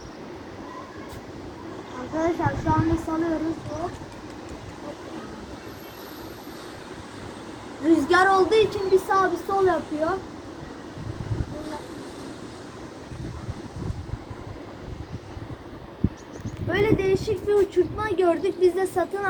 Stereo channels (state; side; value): identical; both; correlation 1.00